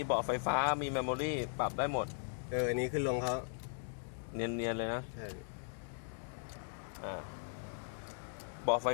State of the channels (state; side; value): silent; right; digital silence